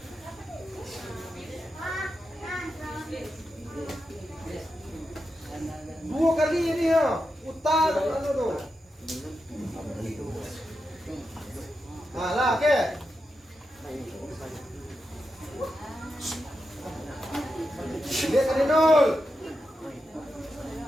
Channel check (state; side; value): normal; both; correlation 0.88